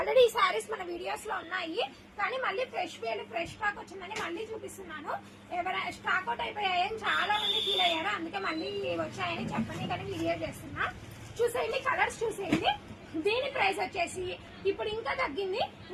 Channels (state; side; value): identical; both; correlation 1.00